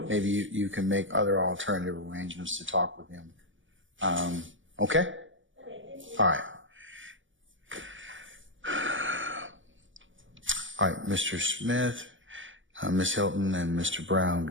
maybe you can make other alternative arrangements to talk with him. Okay? All right. All right, Mr. Smith, Ms. Hilton, and Mr. Brown,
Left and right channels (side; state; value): left; late; 0.56 ms